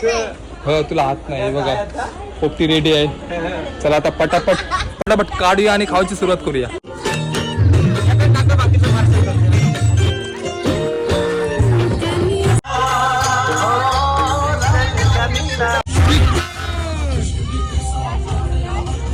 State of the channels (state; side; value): identical; both; correlation 1.00